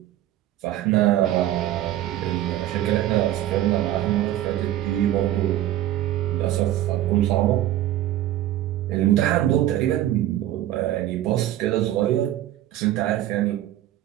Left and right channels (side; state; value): left; quieter; 13.3 dB